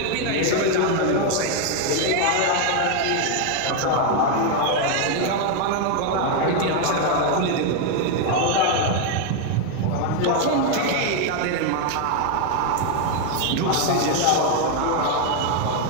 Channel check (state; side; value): different; both; correlation 0.01